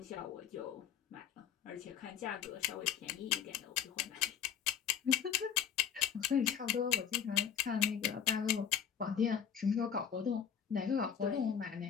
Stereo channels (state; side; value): quieter; right; 8.6 dB